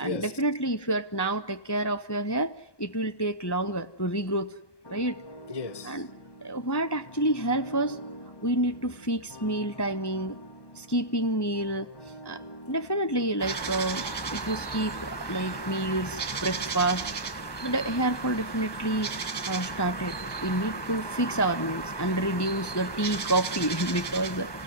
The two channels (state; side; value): late; right; 1.1 ms